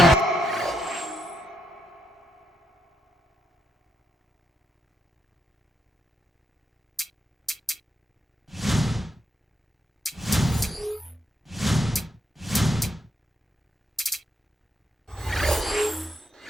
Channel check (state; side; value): normal; both; correlation 0.81